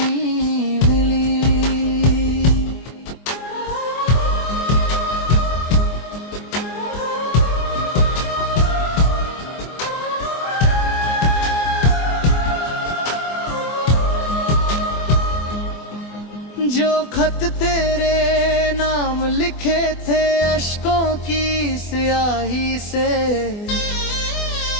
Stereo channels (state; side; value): late; right; 24 ms